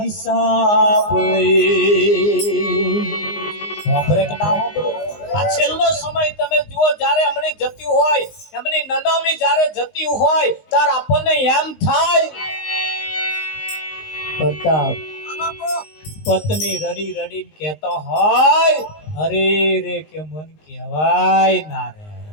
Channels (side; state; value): right; late; 19 ms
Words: સાંભળે કે ના સાંભળે? આ છેલ્લો સમય તમે જુઓ, જ્યારે એમની જતી હોય, એમની નનામી જ્યારે જતી હોય ત્યારે આપણને એમ થાય પ્રતાપ પત્ની રડી રડીને કહેતો હોય અરે રે કે મન કહેવાય ના રે.